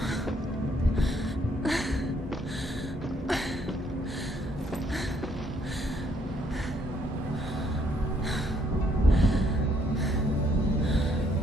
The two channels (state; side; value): normal; both; correlation 0.68